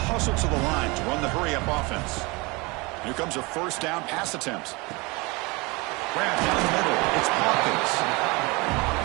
hustle to the line to run the hurry-up offense. Here comes a first down pass attempt. Grab down the middle. It's Hawkins.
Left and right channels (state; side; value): quieter; left; 26.0 dB